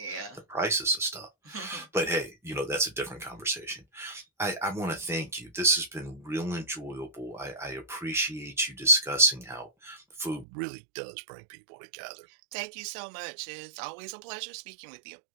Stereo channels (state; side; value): drops out; left; at 10.5 s